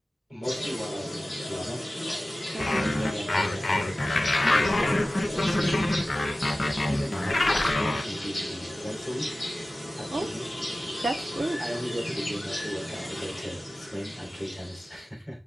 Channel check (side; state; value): both; normal; correlation 0.96